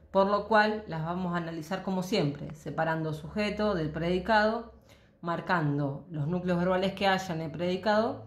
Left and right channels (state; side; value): identical; both; correlation 1.00